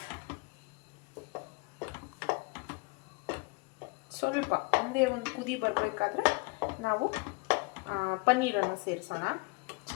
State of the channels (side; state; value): right; quieter; 29.3 dB